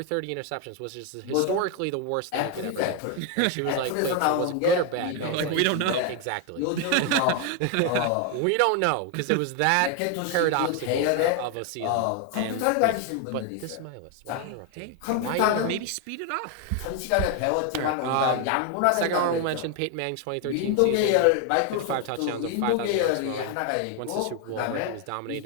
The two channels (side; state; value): both; different; correlation 0.01